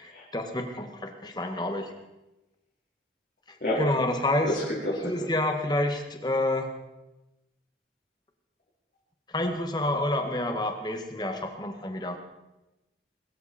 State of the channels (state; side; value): normal; both; correlation 0.48